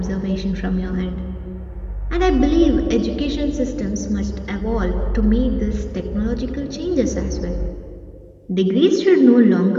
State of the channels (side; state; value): both; identical; correlation 1.00